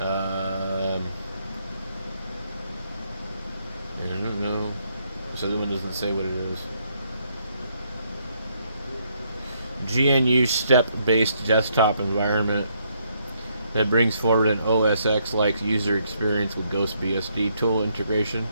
I don't know. This other one doesn't say what it is. GNU step-based desktop environment that brings forward an OS X-like user experience with Ghost BSD tool integration.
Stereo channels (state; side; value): inverted; both; correlation -0.73